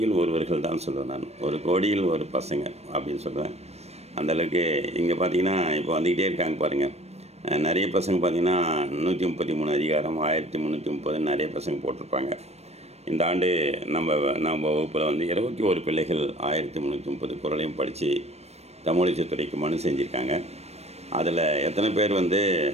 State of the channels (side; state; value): left; late; 0.31 ms